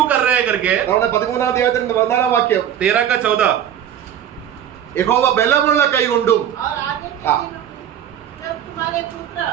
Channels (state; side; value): quieter; left; 10.0 dB